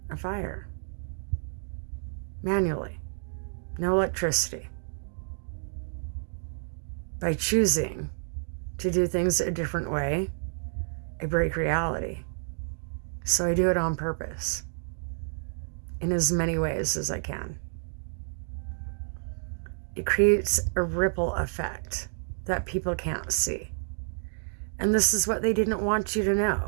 a fire. Manually. No electricity. By choosing to do things a different way, I break reality. So I do it on purpose, in as many ways as I can. It creates a ripple effect that people can't see. And this is what they didn't want you to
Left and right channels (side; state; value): left; silent; digital silence